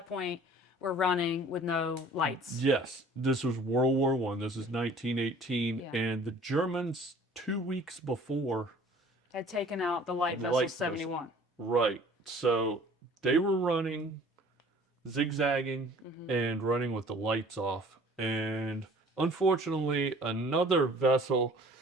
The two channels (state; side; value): normal; both; correlation 0.50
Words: point were running with no lights. Yes, this was World War I. This is 1918, Yeah. and the Germans 2 weeks before Had taken out the light vessel 71. Right. So they were running, zigzagging, and running with the lights off. And unfortunately, another vessel